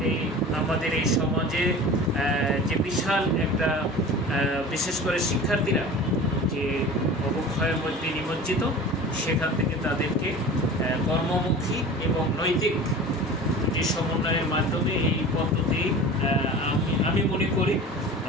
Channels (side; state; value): both; normal; correlation 0.37